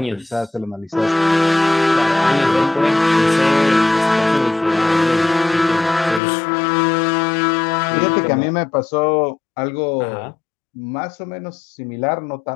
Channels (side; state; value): right; drops out; at 6.2 s